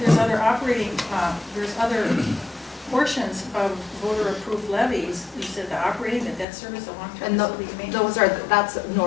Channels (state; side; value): drops out; right; at 6.5 s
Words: there's other operating, there's other portions of voter-approved levies. You said the operating, the debt service, the long-term And facilities maintenance. that's